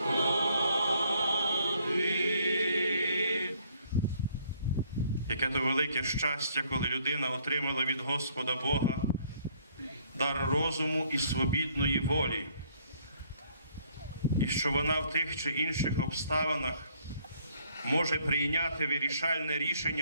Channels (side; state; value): both; inverted; correlation -0.64